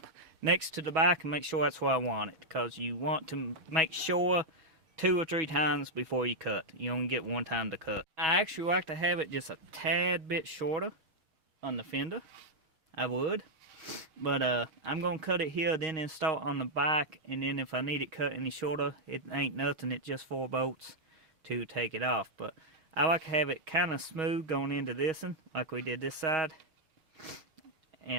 next to the back and make sure that's where I want it, because you want to make sure 2 or 3 times before you cut. You only get 1 time to cut. I actually like to have it just a tad bit shorter on the fender. I would, but I'm gonna cut it here, then install it on the back, and then if I need it cut any shorter, it ain't nothing. It's just 4 bolts to take it off. But I like to have it kind of smooth going into this one, like we did this side.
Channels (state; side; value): late; left; 6.2 ms